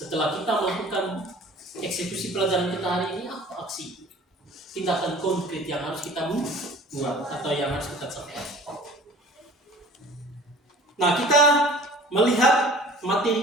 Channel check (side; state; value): both; normal; correlation 0.46